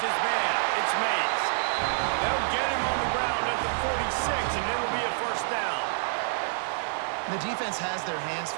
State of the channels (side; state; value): left; silent; 59 dB below the other